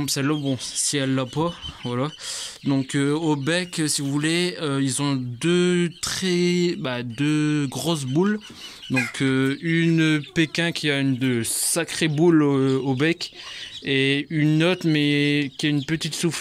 celle-là, bon si elle l'a pas, voilà. Donc au bec, si vous voulez, ils ont deux grosses boules. Donc une Pékin qui a de sacrées boules au bec et une autre mais qui a une petite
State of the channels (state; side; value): identical; both; correlation 1.00